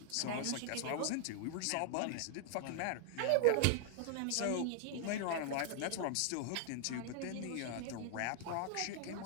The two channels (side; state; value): both; different; correlation 0.00